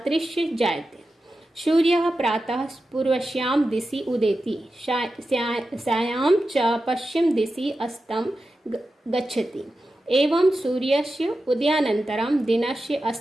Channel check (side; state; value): both; normal; correlation 0.92